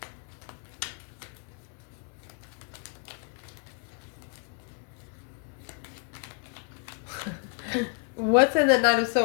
What's in the Knight of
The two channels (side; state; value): right; quieter; 37.5 dB